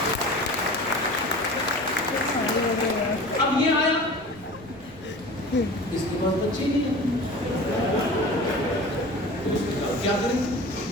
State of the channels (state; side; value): noise; right; rumble, 22 dB below the sound